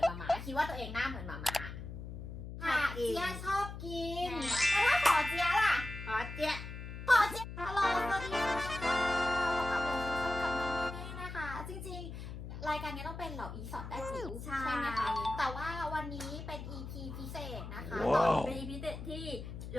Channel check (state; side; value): noise; left; hum, 9 dB below the sound